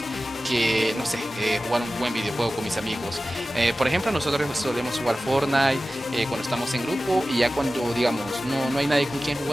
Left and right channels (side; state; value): both; normal; correlation 0.95